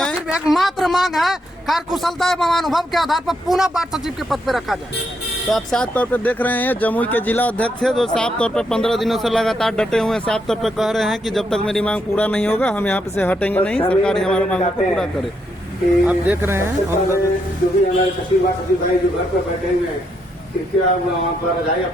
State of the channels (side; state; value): both; normal; correlation 0.78